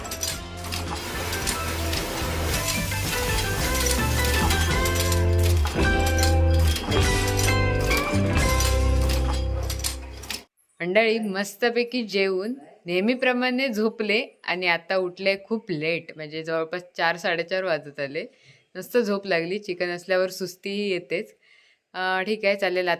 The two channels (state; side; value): identical; both; correlation 1.00